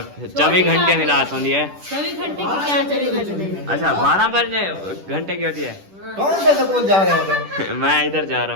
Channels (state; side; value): late; left; 10 ms